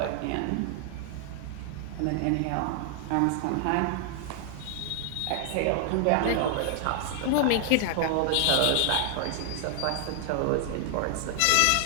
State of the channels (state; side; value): different; both; correlation 0.00